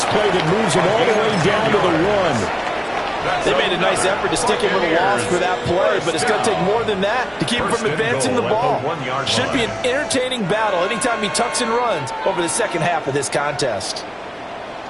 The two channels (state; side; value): identical; both; correlation 1.00